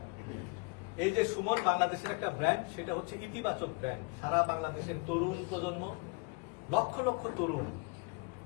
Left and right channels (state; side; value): quieter; right; 31.7 dB